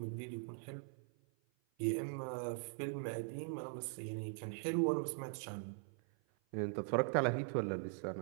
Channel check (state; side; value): silent; left; 50 dB below the other